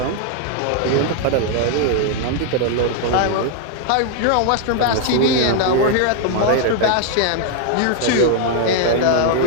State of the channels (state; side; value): different; both; correlation 0.00